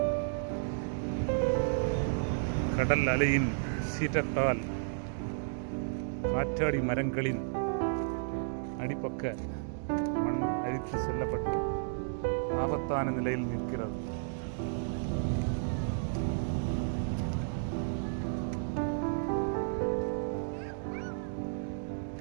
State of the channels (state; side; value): silent; left; digital silence